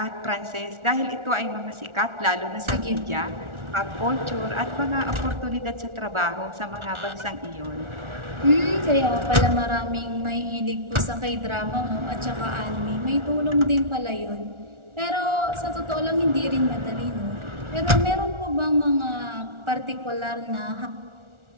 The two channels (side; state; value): left; late; 1.4 ms